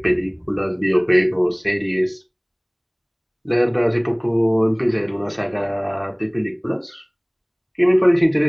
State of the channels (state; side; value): identical; both; correlation 1.00